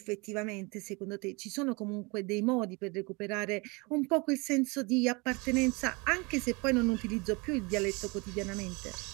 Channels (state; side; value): quieter; left; 27.7 dB